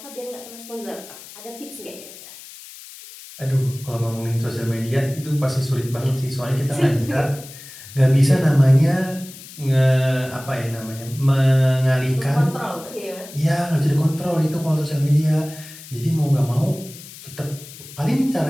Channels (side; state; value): left; noise; hiss, 17 dB below the sound